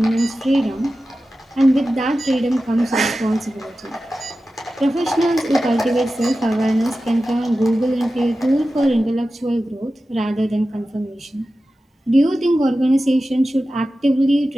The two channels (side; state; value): both; normal; correlation 0.94